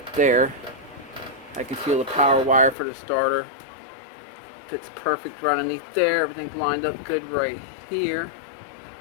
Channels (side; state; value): right; drops out; at 2.8 s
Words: there. I can feel the power wire for the starter. Fits perfect right underneath there. Everything's lined up good right here.